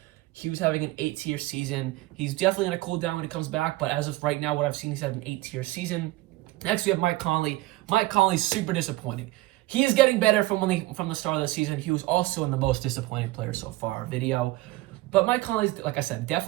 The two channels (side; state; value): left; quieter; 18.7 dB